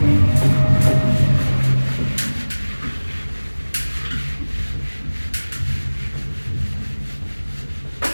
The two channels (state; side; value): inverted; both; correlation -1.00